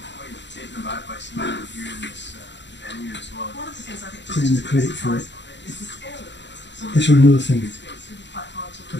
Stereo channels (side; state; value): right; late; 0.52 ms